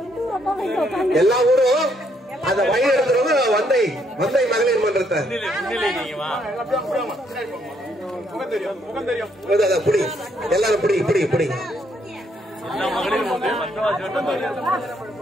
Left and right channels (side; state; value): both; normal; correlation 0.72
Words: எல்லா ஊரும் அந்த வழி நடத்துறவங்க வந்தை மகளிர் மன்றத்தை புடி எல்லாரும் புடி புடி புடி